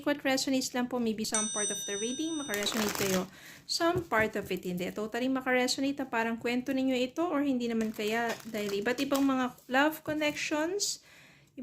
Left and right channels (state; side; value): identical; both; correlation 1.00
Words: what resonates lang po. Maybe some part of the reading makaresonate kayo. Some part of it hindi. Totally makaresonate na parang kwento ninyo ito or hindi naman kaya dahil iba't ibang mga love connections,